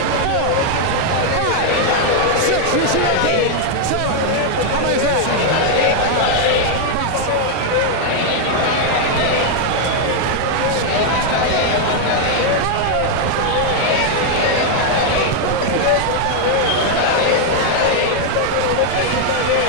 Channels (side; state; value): both; different; correlation 0.00